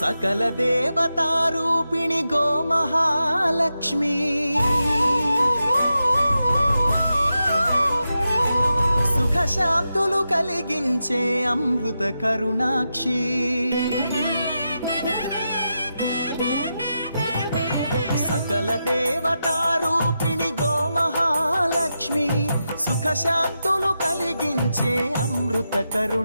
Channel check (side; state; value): both; inverted; correlation -0.88